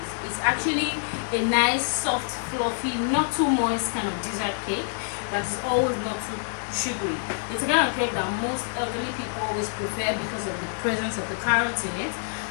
It's actually a nice, soft, fluffy, not too moist kind of dessert cake that is always not too sugary. It's a kind of cake that most elderly people always prefer because of the presence of the carrots in it.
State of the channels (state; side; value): silent; right; 58 dB below the other